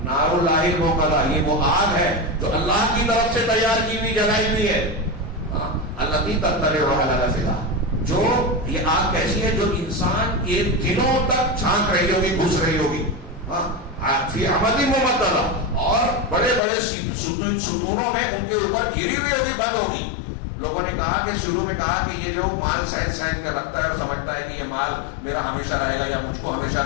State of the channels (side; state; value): right; drops out; at 16.6 s